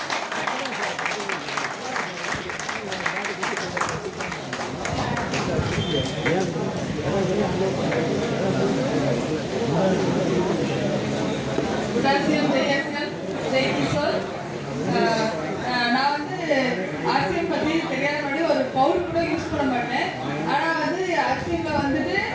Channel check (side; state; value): both; identical; correlation 1.00